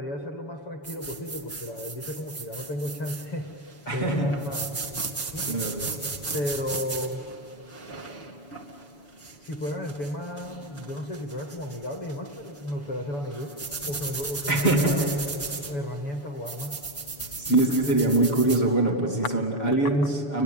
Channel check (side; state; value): right; late; 7.0 ms